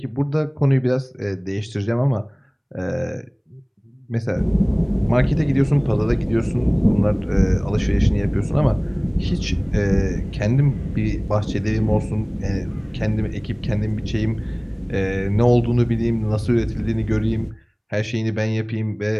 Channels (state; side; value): identical; both; correlation 1.00